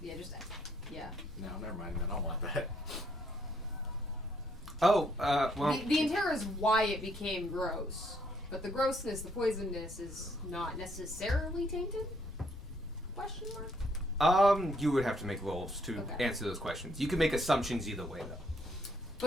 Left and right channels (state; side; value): noise; left; rumble, 15 dB below the sound